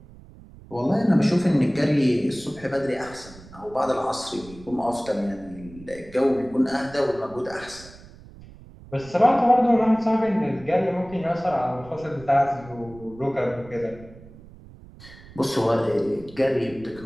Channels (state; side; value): noise; right; rumble, 20 dB below the sound